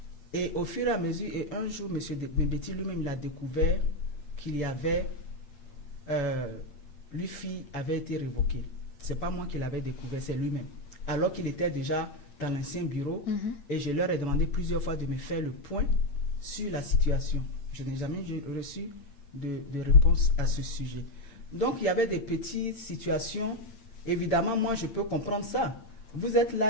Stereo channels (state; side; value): late; right; 8.7 ms